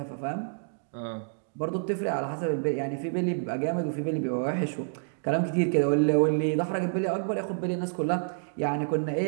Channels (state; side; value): silent; left; digital silence